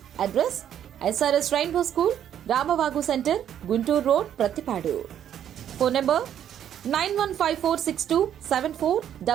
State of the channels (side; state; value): left; quieter; 10.0 dB